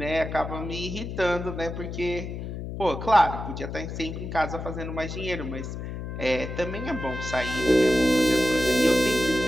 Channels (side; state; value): left; noise; hum, 7 dB below the sound